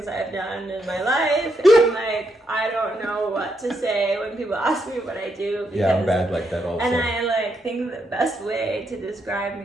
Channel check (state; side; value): normal; both; correlation 0.79